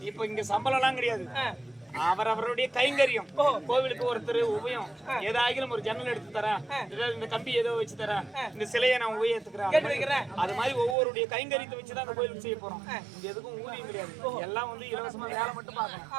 இப்ப இங்க சம்பளம் எல்லாம் கிடையாது. அவரவருடைய கைங்கரியம். கோவிலுக்கு ஒருத்தர் உபயம் ஏதாகிலும் ஒரு ஜன்னல் எடுத்து தரேன், இந்த கம்பி ஏதோ வச்சு தரேன், இந்த சிலையை நான் உபயோகித்துக்கிறேன். அது மாதிரி ஒவ்வொருடைய கைங்கரியத்தை வச்சுதான் அந்த கோயிலுக்கு செய்ய போறோம். இது எதுக்கும் ஊதியம் கிடையாது. எல்லாம் வந்து இலவசமா வேலை மட்டும்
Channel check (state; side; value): drops out; left; at 11.0 s